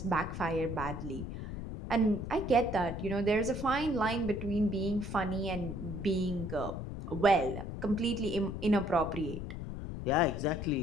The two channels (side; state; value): left; noise; rumble, 7 dB below the sound